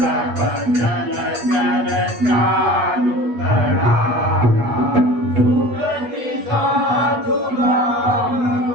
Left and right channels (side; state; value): left; late; 8.3 ms